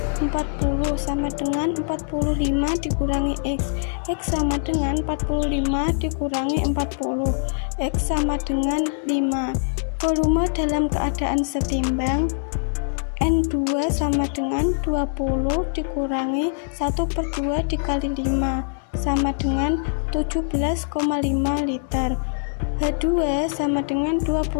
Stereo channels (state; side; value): silent; right; digital silence